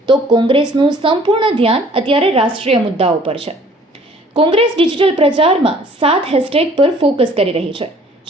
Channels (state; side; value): normal; both; correlation 0.55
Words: તો કોંગ્રેસનું સંપૂર્ણ ધ્યાન અત્યારે રાષ્ટ્રીય મુદ્દાઓ પર છે. કોંગ્રેસ ડિજિટલ પ્રચારમાં 7 હેશટેગ પર ફોકસ કરી રહી છે,